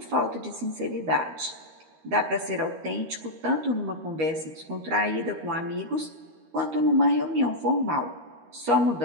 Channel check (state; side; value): late; left; 13 ms